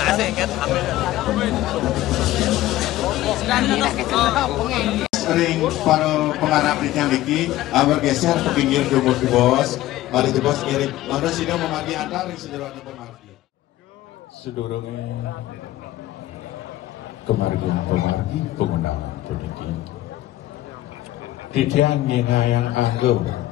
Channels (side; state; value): right; quieter; 15.4 dB